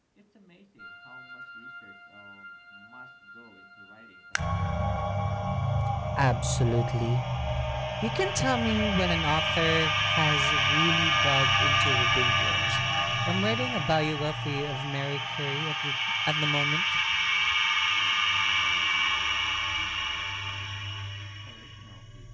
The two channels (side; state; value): both; identical; correlation 1.00